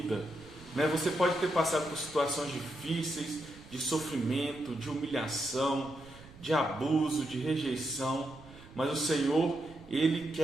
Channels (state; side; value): noise; right; rumble, 20 dB below the sound